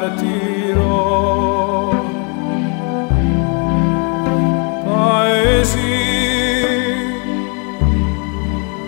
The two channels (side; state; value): right; quieter; 35.2 dB